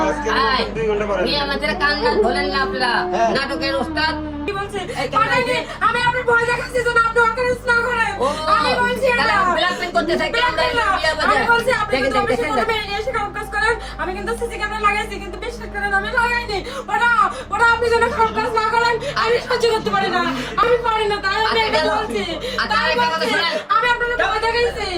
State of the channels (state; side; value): identical; both; correlation 1.00